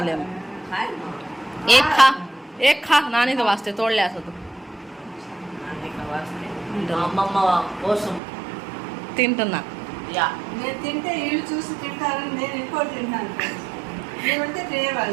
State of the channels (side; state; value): left; drops out; at 8.2 s